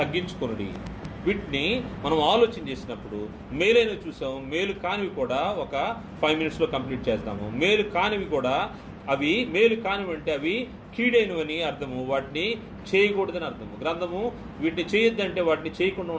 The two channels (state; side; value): identical; both; correlation 1.00